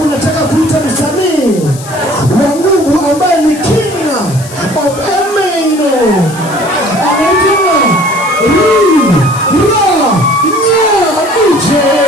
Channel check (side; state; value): left; noise; hiss, 16 dB below the sound